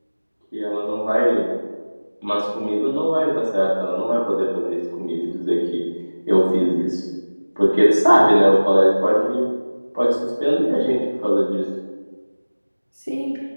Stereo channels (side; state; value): both; inverted; correlation -1.00